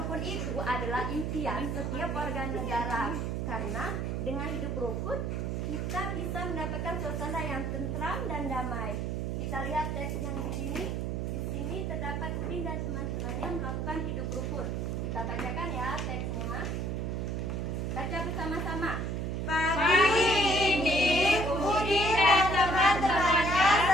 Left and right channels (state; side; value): noise; right; hum, 1 dB below the sound